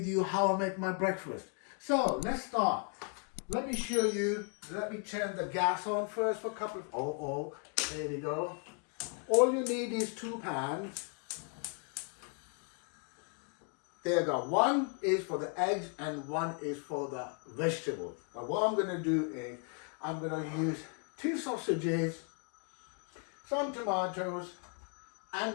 you how I make my breakfast. So let's start. Let me show you. Let me turn the gas on first for a couple of... There we go. All you need is 2 pans. There you go. One is for the eggs and one is for the vegetables. Now what I'm going to do is I'm going to use 2 sausages, some tomatoes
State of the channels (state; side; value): quieter; right; 37.7 dB